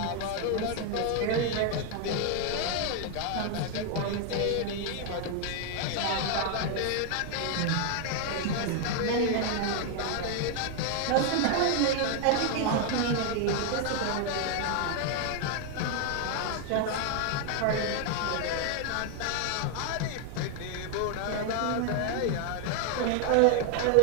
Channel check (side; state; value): both; different; correlation 0.00